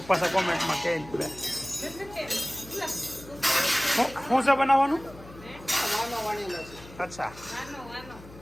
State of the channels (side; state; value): left; noise; hum, 19 dB below the sound